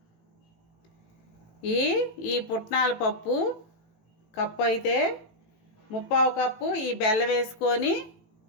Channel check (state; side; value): late; right; 18 ms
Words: ఈ పుట్నాల పప్పు కప్పు అయితే 3/4 కప్పు ఈ బెల్లం వేసుకొని